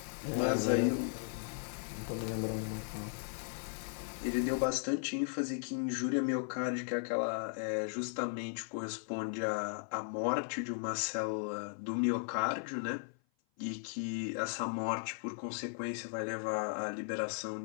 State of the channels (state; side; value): silent; right; 53 dB below the other